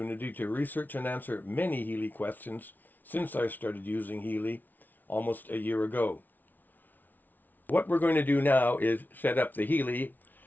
to research and answer many Healy questions since I started using Healy almost a year ago. What we're going to do now is set up the Healy.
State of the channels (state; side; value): late; right; 0.084 ms